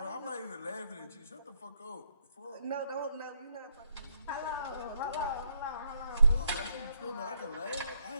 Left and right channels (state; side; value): inverted; both; correlation -0.73